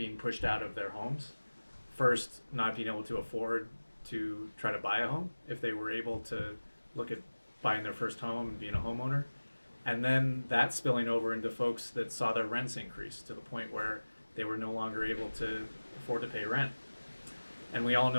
pushed out of their homes. First, not being able to afford to try to buy a home if they were able to look at buying their first home and being a homeowner. And then that spilling over into folks that saw their rents increase to the point where they were no longer able to afford to pay rent. And we all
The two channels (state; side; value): inverted; both; correlation -1.00